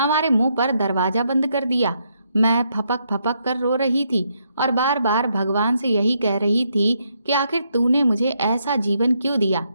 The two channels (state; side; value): inverted; both; correlation -0.76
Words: मुंह पर दरवाजा बंद कर दिया। मैं फपक फपक कर रो रही थी और बार बार भगवान से यही कह रही थी कि आखिर तूने मुझे ऐसा जीवन क्यों दिया।